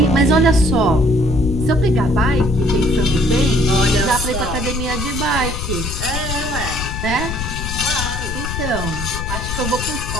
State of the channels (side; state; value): left; noise; rumble, 5 dB below the sound